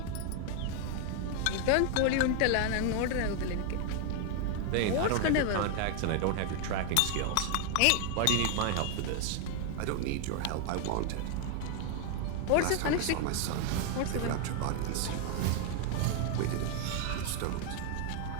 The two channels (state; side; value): different; both; correlation 0.00